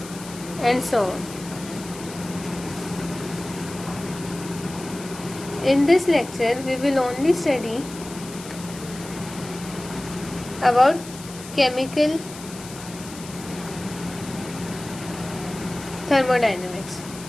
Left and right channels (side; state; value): left; noise; hiss, 15 dB below the sound